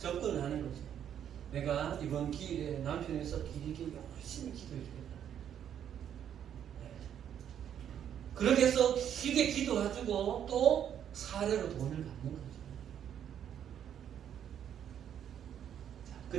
하는 거죠. 내가 이번 기일에 남편이 있어 기리기 열심히 기도해주겠다. 그렇게 해서 길게 기도해주고 또 사례로 돈을 받는 거죠. 그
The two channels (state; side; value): quieter; left; 9.4 dB